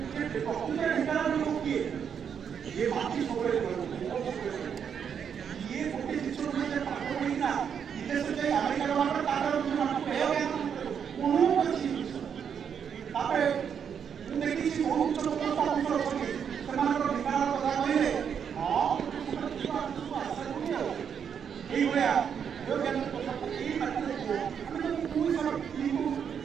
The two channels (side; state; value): left; quieter; 7.6 dB